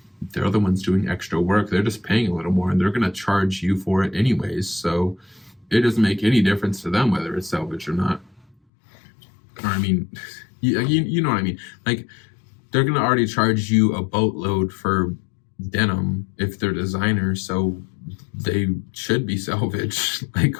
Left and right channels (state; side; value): drops out; right; at 8.6 s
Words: they're the ones doing extra work. They're just paying a little more, and they're gonna charge you for it anyways. So it doesn't make any difference to them whether it's selvage or not. Or I mean, you know what I mean? Like, they're going to already charge you a boatload for denim if they're designers, so they should be selvage, like,